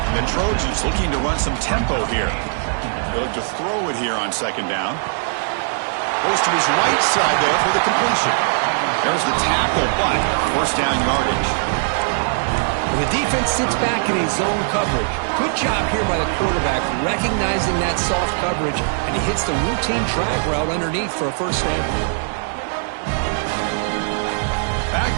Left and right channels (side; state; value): left; silent; digital silence